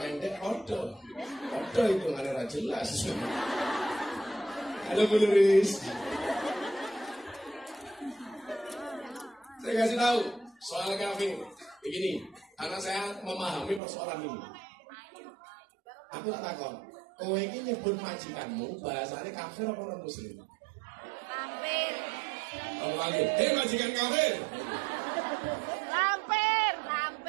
odo itu nggak ada jelas. Halo Bu Nuris. Saya kasih tahu, Soal kafir, begini, karena saya memahami persoalan ini. Aku tak takon, kowe ini nyebut majikanmu, bahasanya kafir apa non muslim? Lampir. Oh, lagi, majikan kafir. Lampir.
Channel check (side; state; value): left; drops out; at 13.8 s